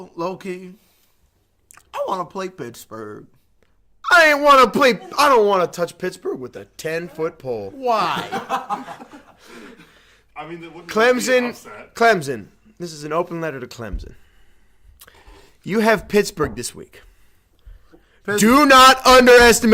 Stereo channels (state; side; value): identical; both; correlation 1.00